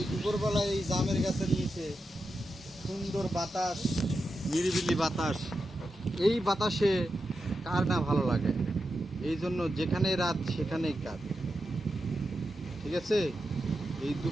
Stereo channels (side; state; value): both; normal; correlation 0.88